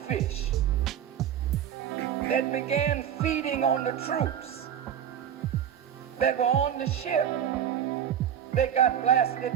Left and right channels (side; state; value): left; quieter; 9.4 dB